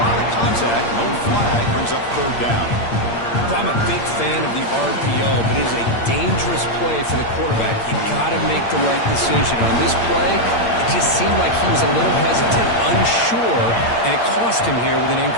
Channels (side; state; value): right; late; 8.7 ms